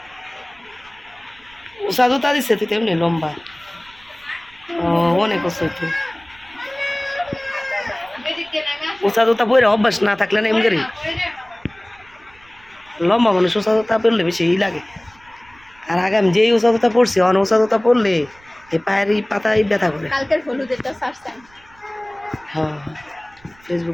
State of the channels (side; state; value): right; noise; rumble, 29 dB below the sound